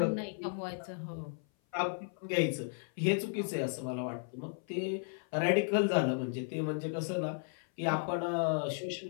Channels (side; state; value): right; silent; 55 dB below the other